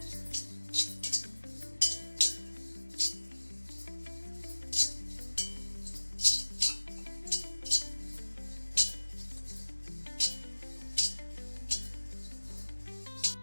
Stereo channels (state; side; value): inverted; both; correlation -1.00